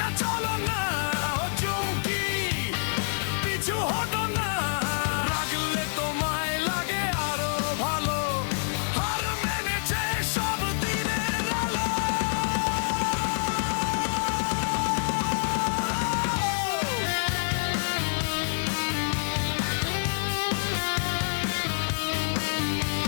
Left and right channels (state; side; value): silent; right; 60 dB below the other